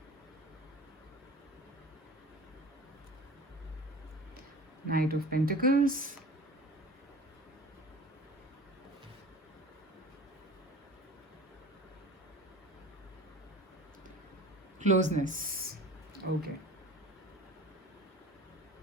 Knight of Pentacles. Closeness. Okay.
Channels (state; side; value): normal; both; correlation 0.39